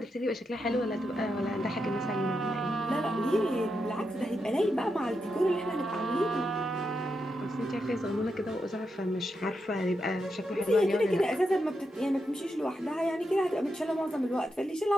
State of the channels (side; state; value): both; normal; correlation 0.85